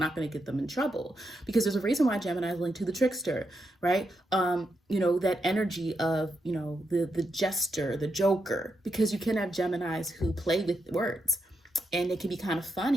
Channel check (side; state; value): both; normal; correlation 0.83